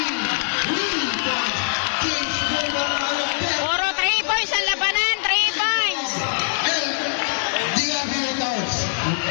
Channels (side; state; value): right; silent; digital silence